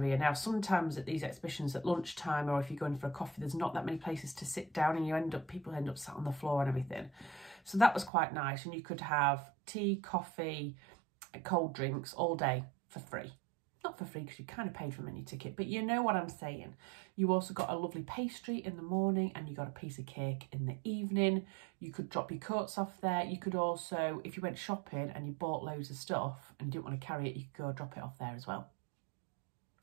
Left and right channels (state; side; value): drops out; left; at 8.1 s